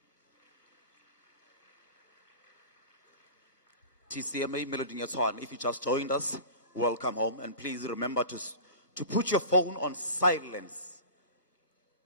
TCMA Meloding ya Tshwane, if you just joined us, welcome home, and please remember to put your phone on silence.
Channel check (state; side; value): inverted; both; correlation -0.35